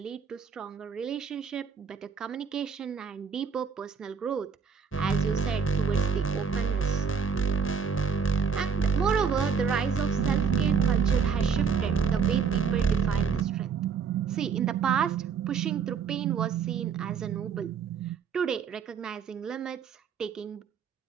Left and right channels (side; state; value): left; quieter; 6.0 dB